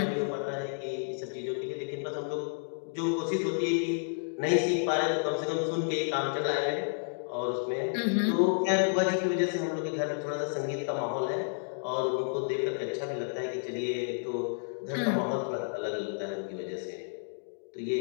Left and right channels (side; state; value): right; silent; digital silence